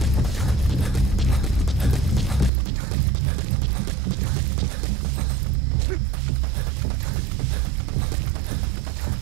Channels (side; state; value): left; drops out; at 2.5 s